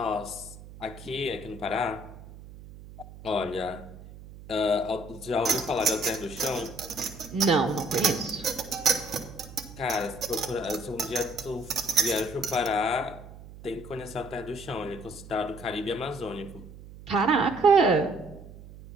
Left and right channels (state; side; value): noise; right; hum, 17 dB below the sound